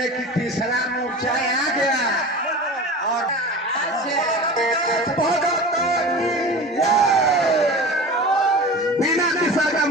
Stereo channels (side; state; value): both; normal; correlation 0.34